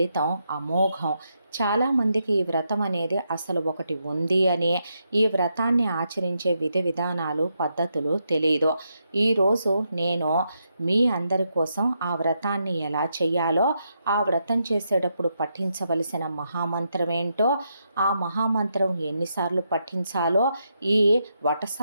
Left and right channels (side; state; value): both; inverted; correlation -0.81